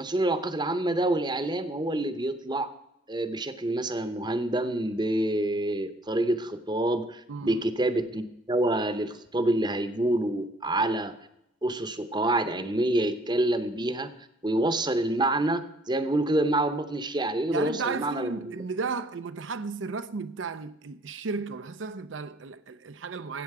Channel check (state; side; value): normal; both; correlation 0.60